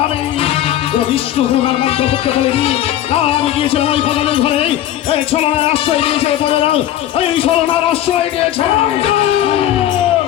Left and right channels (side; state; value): right; quieter; 12.3 dB